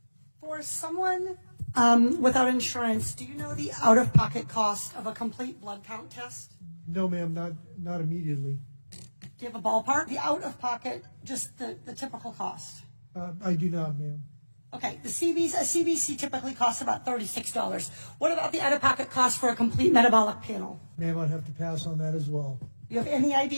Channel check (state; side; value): inverted; both; correlation -1.00